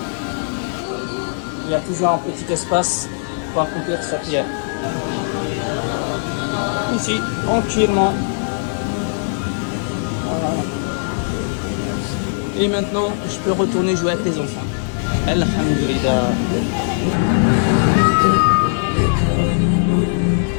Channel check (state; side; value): silent; right; digital silence